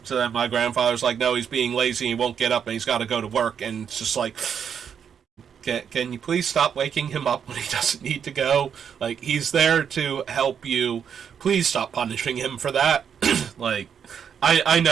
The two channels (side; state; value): left; quieter; 7.7 dB